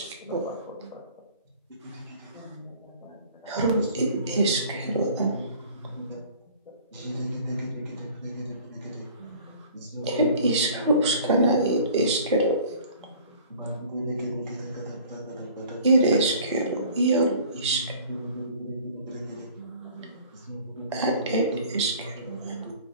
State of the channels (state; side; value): inverted; both; correlation -0.48